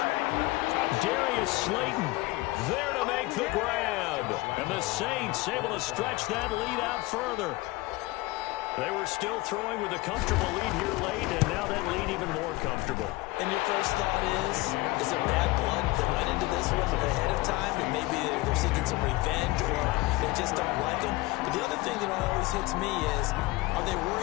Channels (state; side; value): quieter; right; 20.4 dB